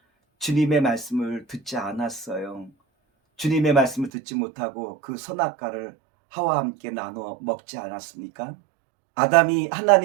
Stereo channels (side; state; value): left; drops out; at 4.1 s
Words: 주님의 말씀을 듣지 않았어요. 주님의 말씀을 듣지 못하고 그 선악과를 하와와 함께 나눠 먹지 않았습니까? 아담이